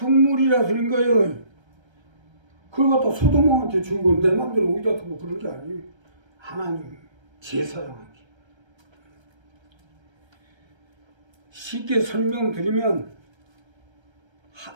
드린 거예요. 그걸 갖다 소도몬한테 주고 내 맘대로 어디다 두고 그런 게 아니에요. 하나님 제사장하기. 쉽게 설명드리면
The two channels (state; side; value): late; left; 1.3 ms